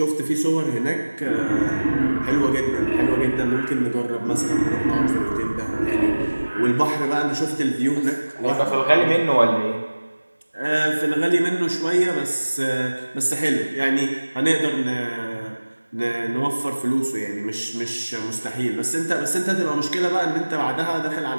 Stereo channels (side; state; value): both; inverted; correlation -1.00